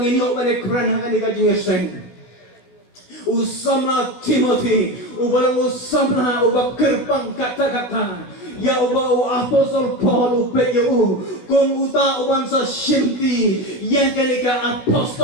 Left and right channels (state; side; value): late; right; 16 ms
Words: inyo mane kran ha kanika jingeseng usama Timothy ubalang usama ubakirpang kata-kata ya uba apostol Paul upeyo kung uta uban sa shimti yang kanika